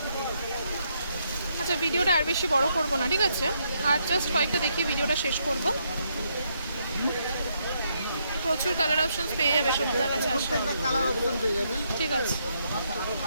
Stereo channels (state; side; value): inverted; both; correlation -0.76